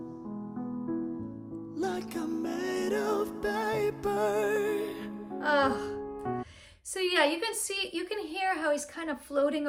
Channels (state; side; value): identical; both; correlation 1.00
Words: like I'm made of paper. So yeah, you can hear how he's kind of floating